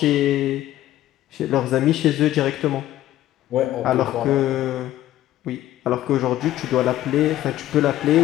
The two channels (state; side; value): quieter; right; 13.8 dB